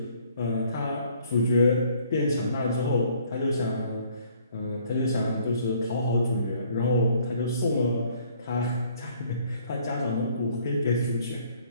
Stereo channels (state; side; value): inverted; both; correlation -0.61